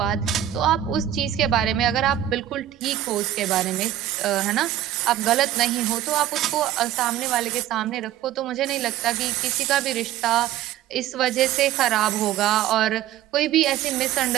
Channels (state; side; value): quieter; left; 12.3 dB